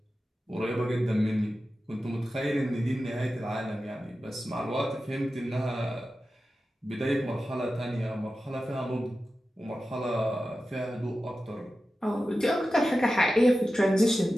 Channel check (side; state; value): both; normal; correlation 0.93